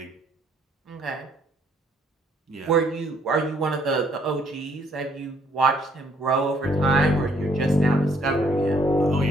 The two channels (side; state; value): both; normal; correlation 0.66